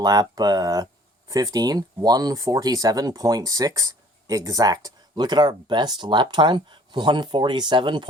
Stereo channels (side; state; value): both; normal; correlation 0.54